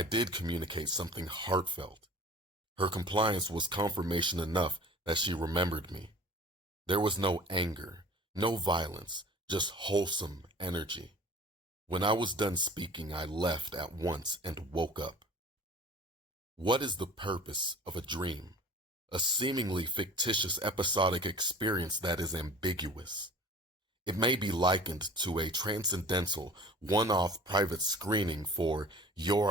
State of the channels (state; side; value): normal; both; correlation 0.44